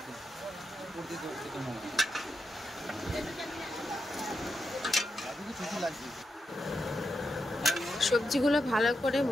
সবজিগুলো ভালো করে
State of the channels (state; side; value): normal; both; correlation 0.86